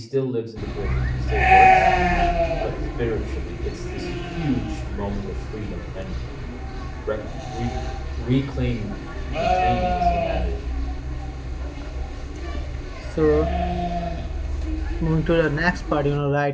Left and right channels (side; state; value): both; identical; correlation 1.00